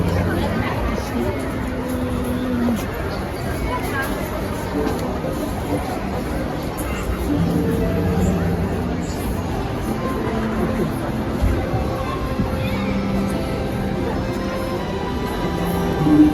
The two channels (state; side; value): identical; both; correlation 1.00